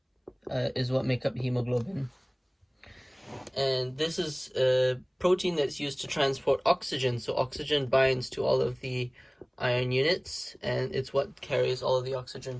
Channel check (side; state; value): both; identical; correlation 1.00